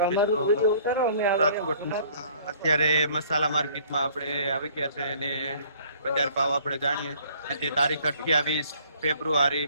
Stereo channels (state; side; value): inverted; both; correlation -0.56